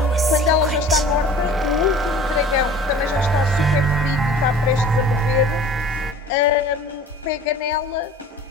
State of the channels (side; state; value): both; normal; correlation 0.45